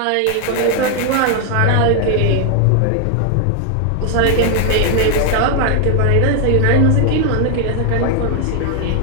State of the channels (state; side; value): different; both; correlation 0.00